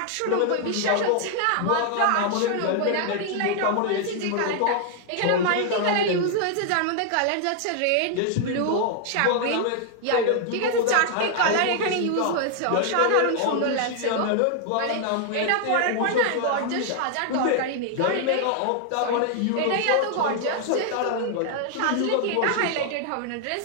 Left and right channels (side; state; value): both; different; correlation 0.00